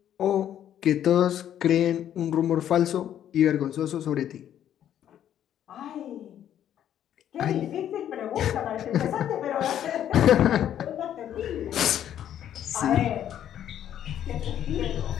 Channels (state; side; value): quieter; right; 10.5 dB